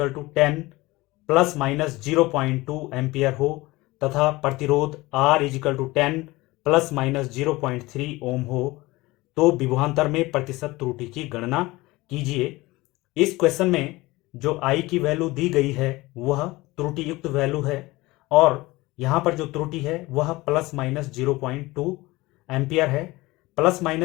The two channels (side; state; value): right; quieter; 20.6 dB